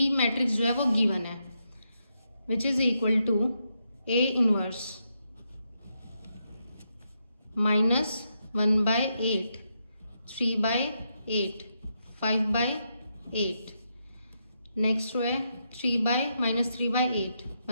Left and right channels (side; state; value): both; inverted; correlation -0.82